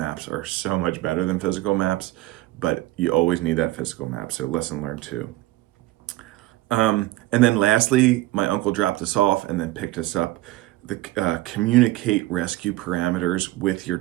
are so much better than physical maps, but you always need that physical map, so lesson learned too. And then lastly, my uncle dropped us off and then picked us up. Communicate rescue parameters with your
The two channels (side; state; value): left; quieter; 17.7 dB